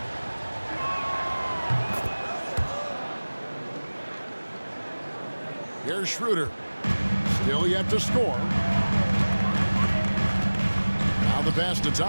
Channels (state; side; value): inverted; both; correlation -1.00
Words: Here's Schroeder. Still yet to score. Now the pass to